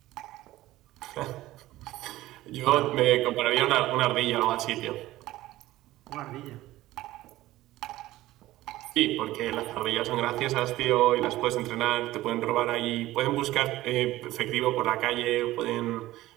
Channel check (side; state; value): left; quieter; 16.4 dB